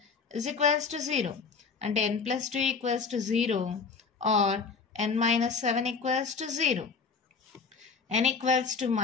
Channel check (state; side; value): quieter; right; 5.1 dB